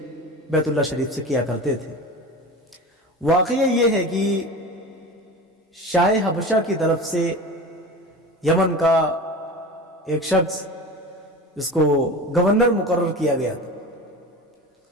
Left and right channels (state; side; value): normal; both; correlation 0.32